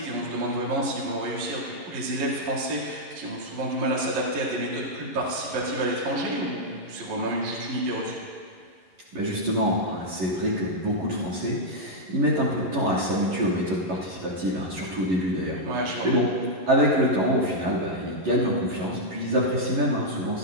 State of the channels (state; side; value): late; left; 11 ms